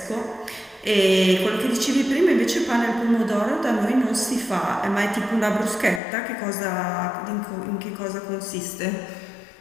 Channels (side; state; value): right; drops out; at 6.0 s